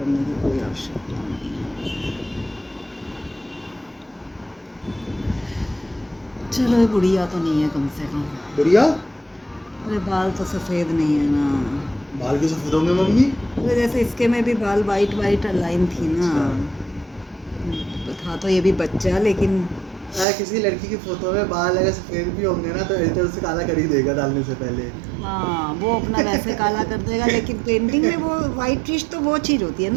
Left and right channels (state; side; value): drops out; left; at 20.2 s